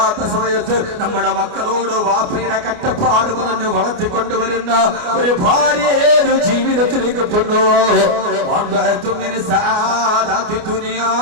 സമയത്ത് നമ്മുടെ മക്കളോട് വാപ്പയുടെ കഷ്ടപ്പാട് പറഞ്ഞു വളർത്തിക്കൊണ്ടുവരുന്ന ഒരു ഭാര്യ ഏത് ജീവിതത്തിൽ കിട്ടുന്നു?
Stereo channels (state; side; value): late; left; 29 ms